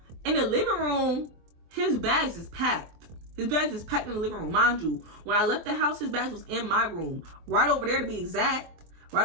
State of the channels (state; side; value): late; left; 23 ms